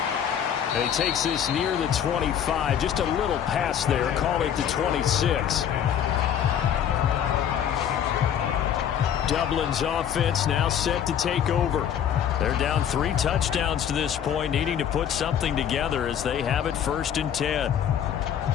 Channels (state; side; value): quieter; right; 9.2 dB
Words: And he takes this near the 25. Just a little pass there. Call it the 26. Dublin's offense now set to take over. They're down 3 touchdowns to this point, needing to put something together as they have it 1st and 10.